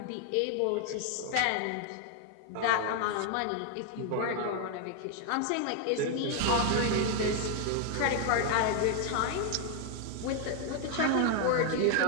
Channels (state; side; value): different; both; correlation 0.00